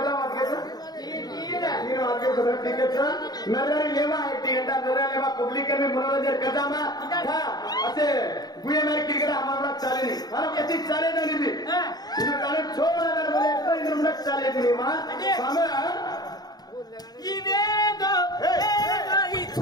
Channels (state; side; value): late; right; 0.19 ms